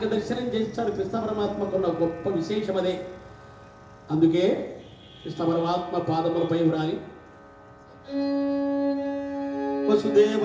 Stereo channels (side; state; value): both; identical; correlation 1.00